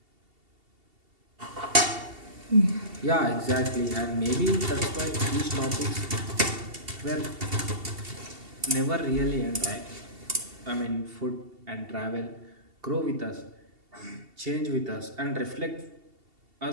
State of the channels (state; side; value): late; left; 2.7 ms